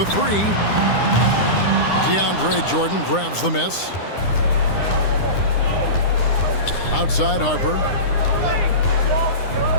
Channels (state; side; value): late; right; 9.8 ms